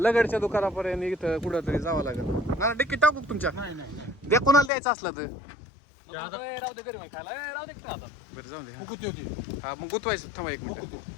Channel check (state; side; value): drops out; right; at 4.7 s